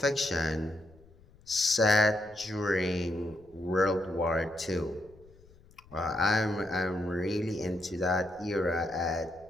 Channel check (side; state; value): left; noise; rumble, 26 dB below the sound